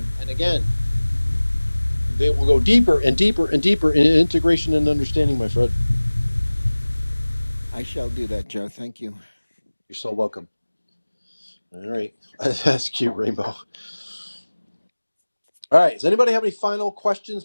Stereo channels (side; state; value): both; inverted; correlation -1.00